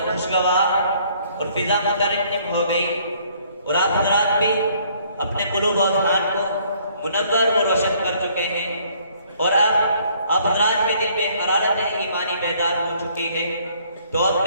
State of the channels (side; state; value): both; inverted; correlation -0.63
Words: خوشگوار اور فضا مترنم ہو گئی، اور آپ حضرات بھی اپنے قلوب و اذہان کو منور اور روشن کر چکے ہیں، اور اب آپ حضرات کے دل میں حرارت ایمانی بیدار ہو چکی ہے. تو